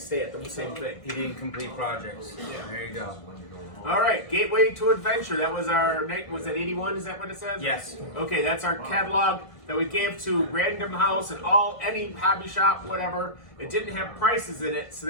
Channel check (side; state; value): right; late; 1.5 ms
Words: at the same thing. He didn't complete projects. Yeah. There you go. All right, Gateway to Adventure. That was was that 81? Is that what it says? Yes. Okay, that's our catalog that we gave to Random House and any hobby shop, whatever. It didn't have prices in it, so